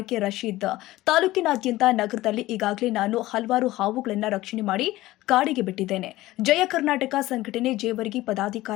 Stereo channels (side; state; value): right; quieter; 17.1 dB